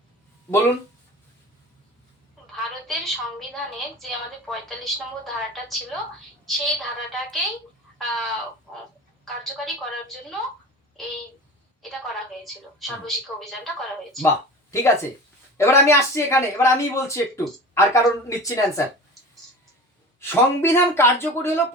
বলুন। ভারতের সংবিধানে যে আমাদের 45 নম্বর ধারাটা ছিল সেই ধারাটাকেই কার্যকারী করার জন্য এটা করা হয়েছিল, সর্বশিক্ষা অভিযানটা করা হয়েছিল। বাহ, ঠিক আছে। এবার আমি আসছি এখানে, এবার আমি বলছি একটু, আর কারণ নিচ্ছি না অ্যান্সার। সংবিধান কার্যকরী হলো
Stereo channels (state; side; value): normal; both; correlation 0.35